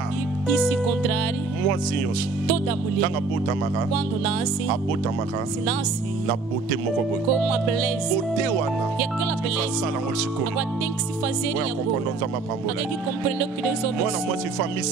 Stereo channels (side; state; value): left; quieter; 4.0 dB